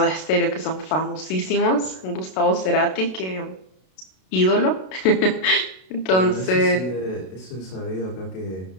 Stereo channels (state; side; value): late; right; 32 ms